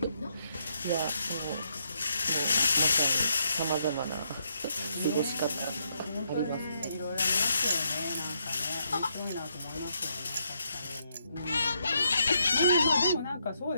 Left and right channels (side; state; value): both; inverted; correlation -0.77